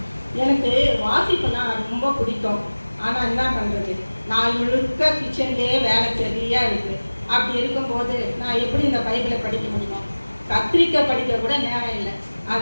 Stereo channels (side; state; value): both; inverted; correlation -1.00